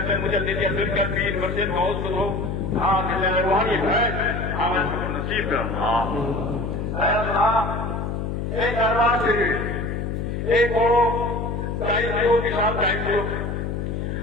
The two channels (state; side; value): noise; left; hum, 3 dB below the sound